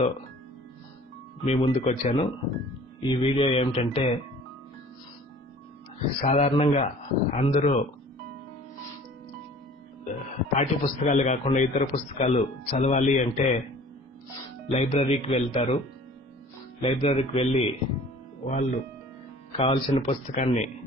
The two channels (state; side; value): normal; both; correlation 0.48